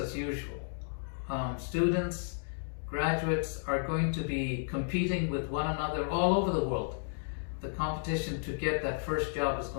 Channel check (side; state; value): right; silent; digital silence